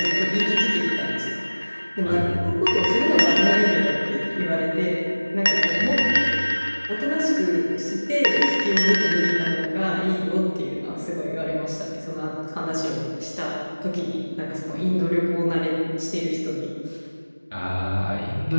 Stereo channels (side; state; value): both; inverted; correlation -1.00